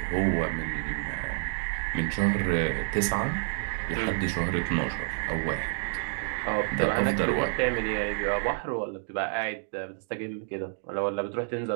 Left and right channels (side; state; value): left; silent; 59 dB below the other